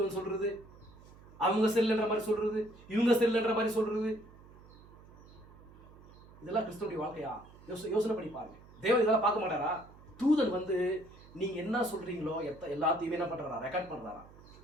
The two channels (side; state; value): right; noise; hum, 22 dB below the sound